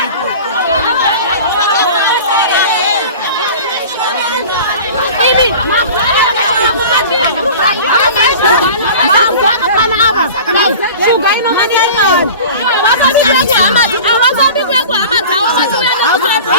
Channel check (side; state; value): both; inverted; correlation -0.38